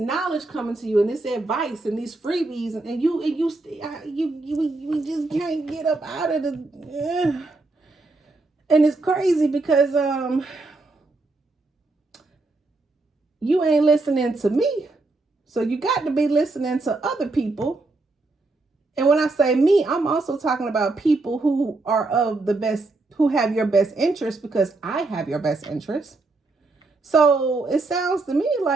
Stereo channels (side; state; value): left; quieter; 3.3 dB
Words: coming to you, and this advice and these freebies, and you just can't get up out of the. And it's crazy because you ain't listening to me, so you got to be listening to other people. And when I say me, I'm also talking about people who are who have your best interest, because I have your best interest. So it sounds to me